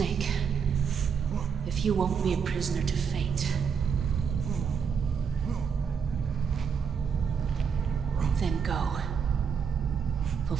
if you won't be a prisoner to fate, then go.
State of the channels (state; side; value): quieter; left; 6.6 dB